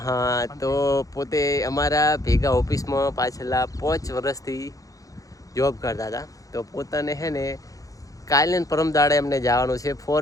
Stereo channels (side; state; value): right; late; 0.17 ms